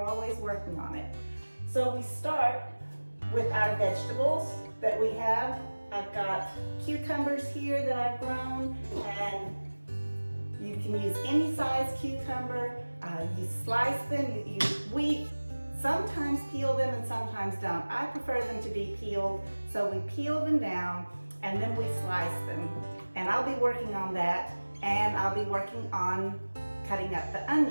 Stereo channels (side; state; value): both; inverted; correlation -1.00